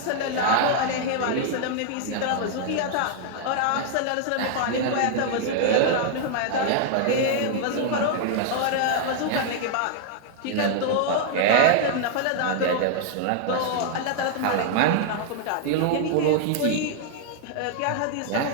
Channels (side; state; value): both; different; correlation -0.01